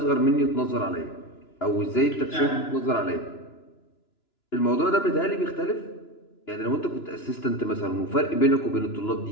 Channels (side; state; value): right; late; 2.9 ms